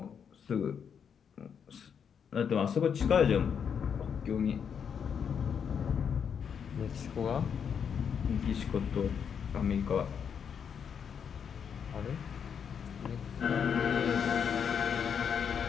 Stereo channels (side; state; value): right; quieter; 7.3 dB